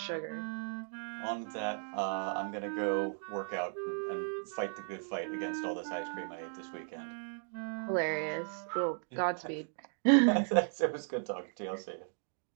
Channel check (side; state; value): left; silent; 54 dB below the other